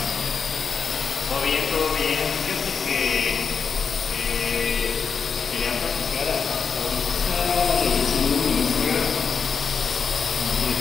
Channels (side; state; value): right; quieter; 5.9 dB